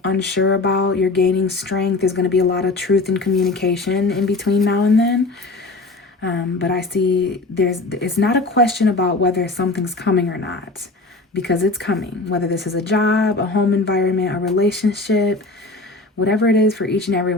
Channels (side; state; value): right; quieter; 3.2 dB